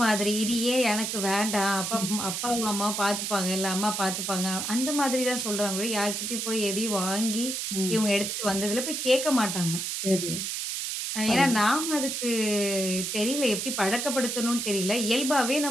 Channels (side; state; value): right; noise; hiss, 3 dB below the sound